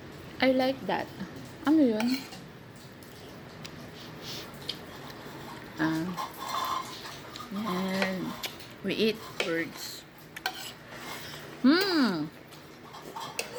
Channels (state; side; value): identical; both; correlation 1.00